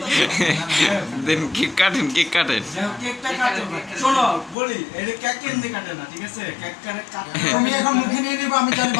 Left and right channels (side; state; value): right; drops out; at 4.5 s